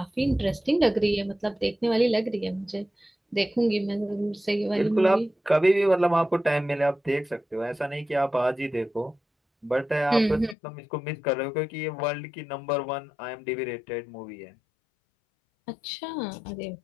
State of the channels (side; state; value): right; drops out; at 10.6 s